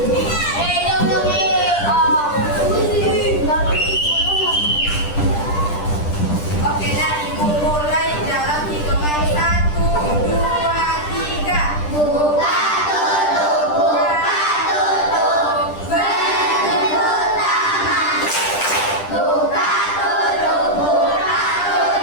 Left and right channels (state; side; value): late; right; 10 ms